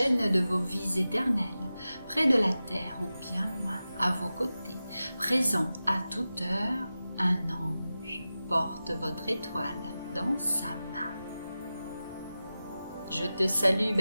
de vos vies éternelles, près de la terre ou bien loin, à vos côtés, présent à toute heure, un ange porte votre étoile dans sa main. Je te salue,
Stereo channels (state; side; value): inverted; both; correlation -0.94